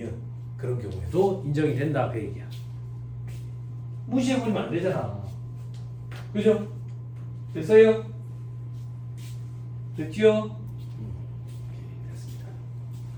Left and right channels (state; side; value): identical; both; correlation 1.00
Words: 그런 경우에도 인정이 된다 그 얘기야. 무시해버리면 안 되잖아. 그죠? 됐어요? 됐지요? 됐습니다.